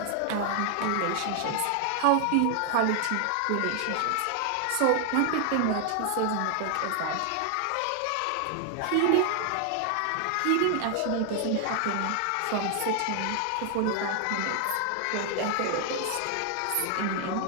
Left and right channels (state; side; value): different; both; correlation 0.00